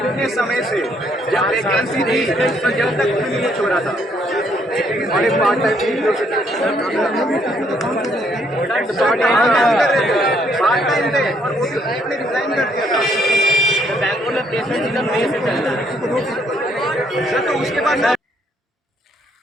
समय से जब वैकेंसी थी तो जब तक कुछ नहीं छोड़ा था, और एक पार्ट टाइम थे और वो भी आपने रिजाइन कर दिया था। बैंगलोर में प्लेसमेंट सीजन में से चल रहा है सर, तो उसके बाद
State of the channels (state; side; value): normal; both; correlation 0.69